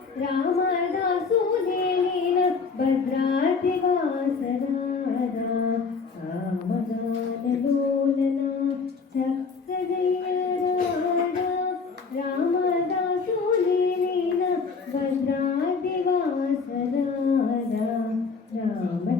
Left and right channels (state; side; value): quieter; right; 5.0 dB